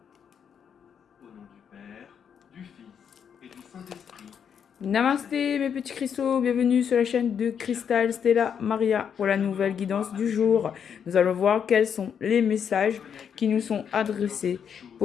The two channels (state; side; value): quieter; right; 7.7 dB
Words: Au nom du Père, du Fils et du Saint-Esprit. Namasté mes petits cristaux, bienvenue sur la chaîne de Cristal Stella Maria pour la nouvelle guidance du jour. Nous allons voir quels sont les messages qui nous sont adressés